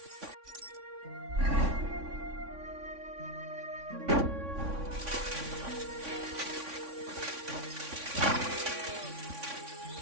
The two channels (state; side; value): late; left; 3.6 ms